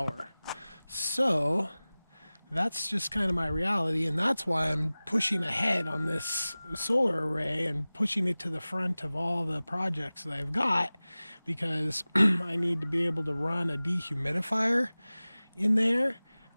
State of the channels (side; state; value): both; inverted; correlation -0.98